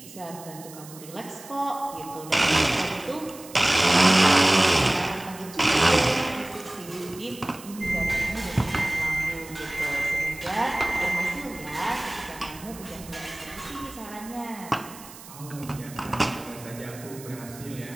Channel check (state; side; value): noise; right; hiss, 17 dB below the sound